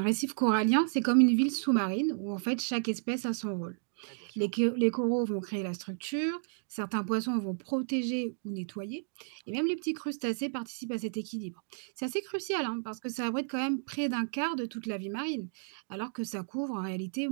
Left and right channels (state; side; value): silent; left; digital silence